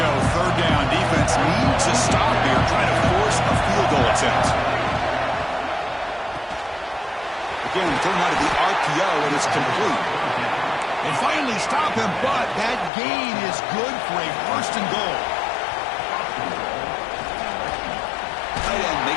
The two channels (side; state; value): right; drops out; at 12.9 s